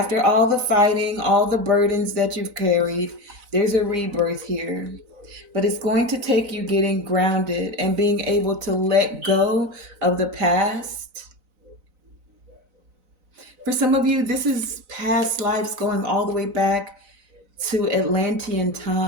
all the fighting, all the burdens that you've carried, there's a rebirth here. But it's going to take you getting grounded and being able to let go of the past. For some of you, this is past lives going all the way back to Atlantean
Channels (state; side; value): late; left; 4.0 ms